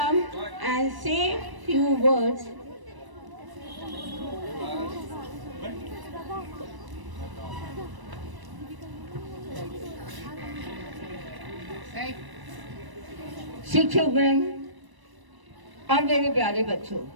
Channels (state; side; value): late; left; 1.0 ms